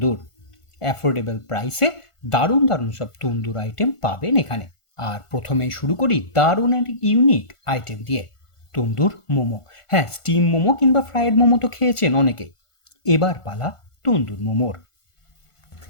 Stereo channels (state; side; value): late; right; 1.5 ms